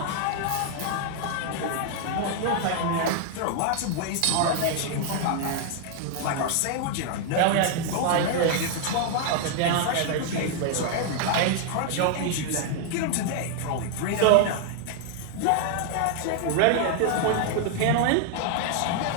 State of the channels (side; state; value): both; different; correlation 0.00